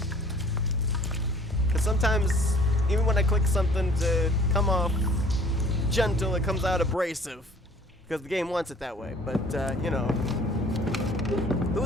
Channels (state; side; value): normal; both; correlation 0.52